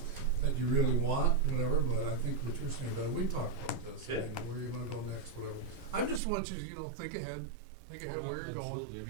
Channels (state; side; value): drops out; left; at 6.2 s